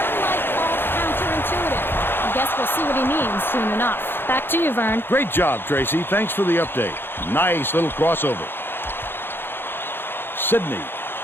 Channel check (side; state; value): right; late; 0.10 ms